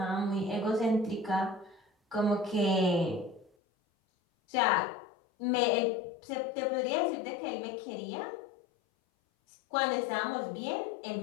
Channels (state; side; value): drops out; right; at 3.5 s